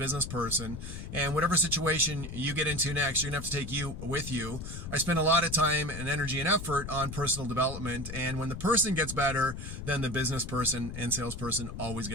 person, and whatever situation you get into next, you're gonna have to take you with you. I spend a lot of time and energy and effort on personal development, and when the person gets better, then the business person and salesperson always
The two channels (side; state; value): left; noise; rumble, 8 dB below the sound